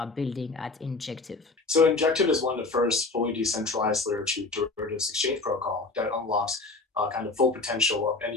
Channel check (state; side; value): quieter; right; 3.6 dB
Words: building at Injective? So Injective is one of the first fully decentralized layer 2 derivatives exchange protocol that unlocks kind of full potential of